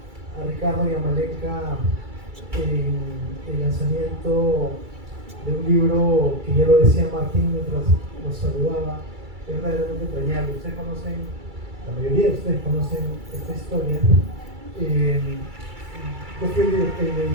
a Ricardo y a Malenka en el lanzamiento de un libro que ya lo decía Martín mientras nos saludaba, es verdaderamente entrañable. Ustedes conocen, la mayoría de ustedes conocen esta historia. Yo fui el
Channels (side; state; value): left; late; 2.3 ms